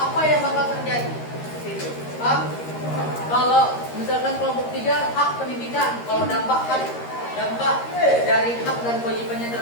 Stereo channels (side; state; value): right; late; 13 ms